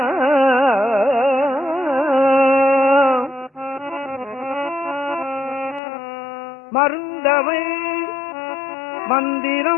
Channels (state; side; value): drops out; right; at 5.8 s